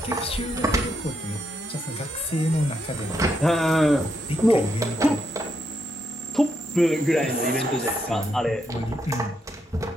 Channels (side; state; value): both; normal; correlation 0.79